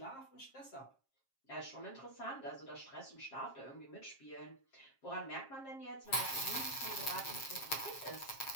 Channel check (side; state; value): right; late; 7.4 ms